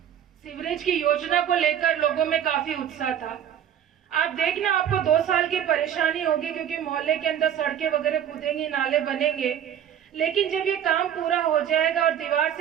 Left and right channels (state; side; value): quieter; left; 9.7 dB